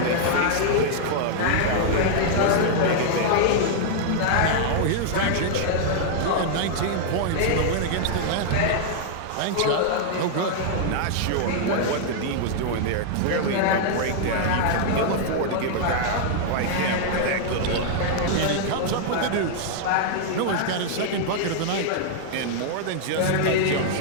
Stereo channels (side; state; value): both; different; correlation -0.01